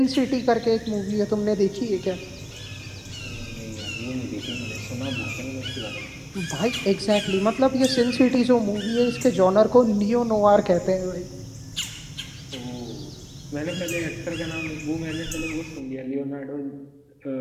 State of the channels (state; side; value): identical; both; correlation 1.00